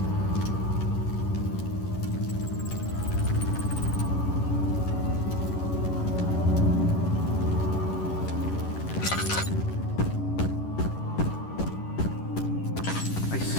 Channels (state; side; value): late; right; 11 ms